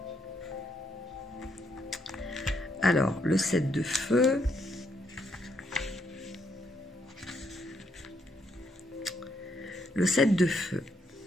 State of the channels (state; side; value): normal; both; correlation 0.75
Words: Alors, le 7 de feu. le 7 de feu.